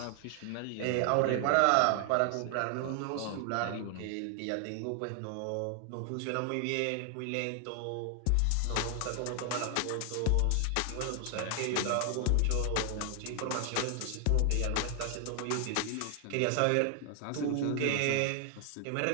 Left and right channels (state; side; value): different; both; correlation 0.00